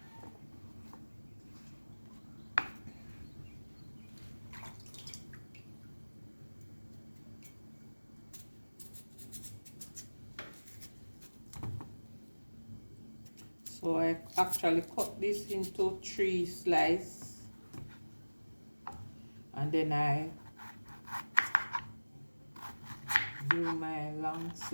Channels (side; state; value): both; inverted; correlation -1.00